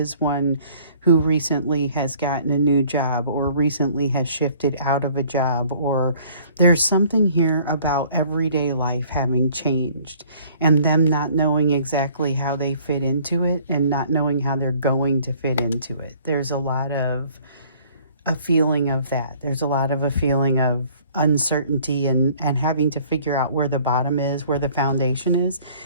one who recently has gotten a new job or recently has shifted out of a job, or there's something here about everyday life having changed and them not knowing exactly how they fit into it and not knowing how they're going to fit into it. There's a lot of a feeling of that. There's a lot of a feeling of uncertainty and having to figure out where the bottom is, where the foundation is,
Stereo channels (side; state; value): both; inverted; correlation -0.56